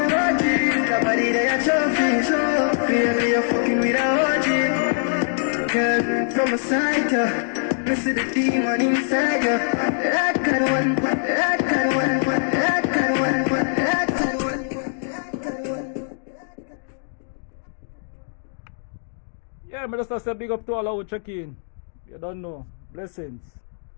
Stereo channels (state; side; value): silent; right; digital silence